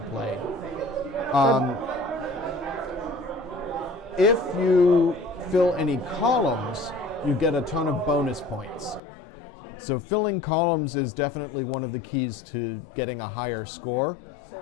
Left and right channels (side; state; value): right; drops out; at 9.0 s